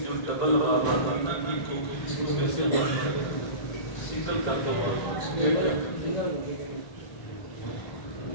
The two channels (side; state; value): right; late; 1.5 ms